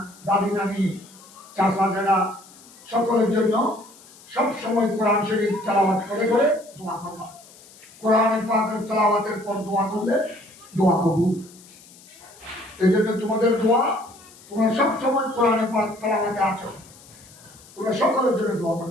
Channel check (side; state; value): left; noise; hiss, 23 dB below the sound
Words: দাদি নানি, চাচা যারা, সকলের জন্য সব সময় কোরআন শরীফ তেলাওয়াত করে করে দোয়া করবা। কোরআন পাকের তেলাওয়াতের পর দোয়া করলে দোয়া কবুল। এই জন্য তোমাদের দোয়া, তোমরা সব সময় কোরআন পাক তেলাওয়াতে আছো, তোমরা সকলের জন্য দোয়া